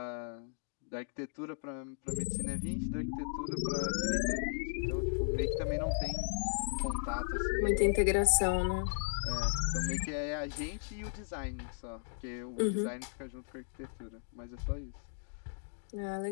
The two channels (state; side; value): silent; right; digital silence